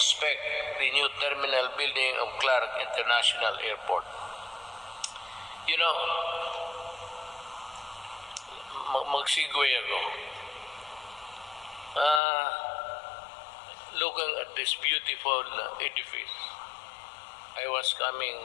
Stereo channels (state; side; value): drops out; right; at 12.2 s